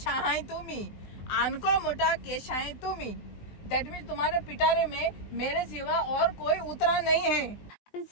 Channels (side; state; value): right; late; 20 ms